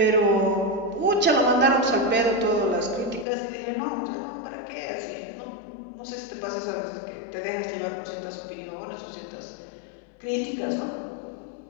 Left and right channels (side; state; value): right; drops out; at 3.2 s